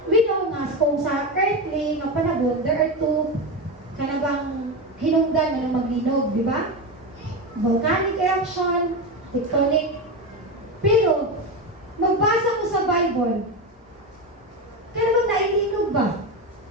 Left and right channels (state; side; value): normal; both; correlation 0.17